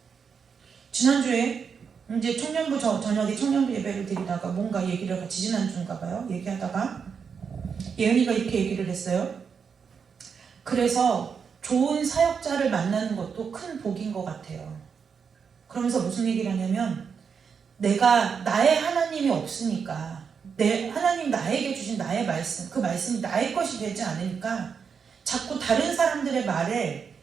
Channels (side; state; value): left; quieter; 6.3 dB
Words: 지난주에 이제 청년부 저녁에 청년부 예배를 드리다가 뭔가 얘기를 같이 지난주인가 봐요. 얘기하다가 예은이가 이렇게 얘기를 했어요. 그래서 좋은 사역자를 만나는 것도 큰 복인 것 같아요. 그러면서 무슨 얘기를 하냐면 내가 나의 하나님이 없으니까 하나님 나에게 주신 나의 말씀, 그 말씀이 나의 것이 되지 않으니까 자꾸 다른 사람들의